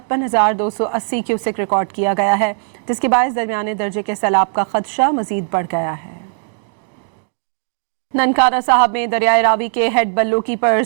क्यूसेक रिकॉर्ड किया गया है, जिसके बायस दरमियाने दर्जे के सैलाब का खदशा मजीद बढ़ गया है। ननकाना साहब में दरियाए रावी के हेड बल्लोकी पर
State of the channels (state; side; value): silent; left; digital silence